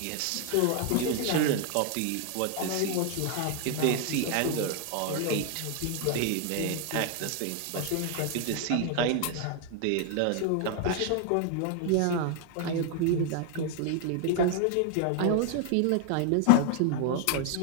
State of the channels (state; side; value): different; both; correlation 0.00